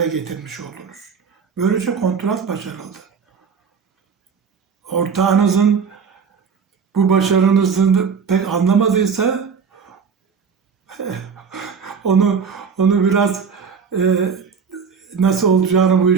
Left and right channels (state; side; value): quieter; left; 6.1 dB